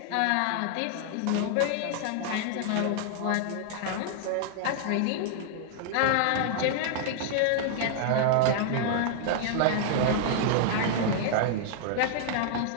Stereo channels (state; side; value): different; both; correlation -0.01